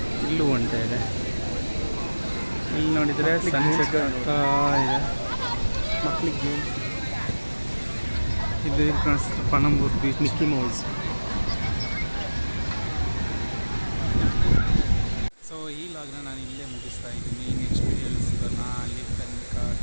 ಇಲ್ಲೂ ಒಂಟೆ ಇದೆ. ಇಲ್ಲಿ ನೋಡಿದರೆ ಸನ್ಸೆಟ್ ಆಗ್ತಾ ಇದೆ. ಮಕ್ಕಳಿಗೆ ಗೇಮ್ಸ್. ಇದು ಕಾಣಿಸ್ತದೆ Panambur beach. Mickey Mouse. So ಈ ಲಾಗ್ನ ನಾನು ಇಲ್ಲೇ ಮುಗಿಸ್ತಾ ಇದ್ದೀನಿ. ನೆಕ್ಸ್ಟ್ ವಿಡಿಯೋಲಿ ಸಿಗೋಣ. ಅಲ್ಲಿ ತನಕ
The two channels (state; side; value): inverted; both; correlation -1.00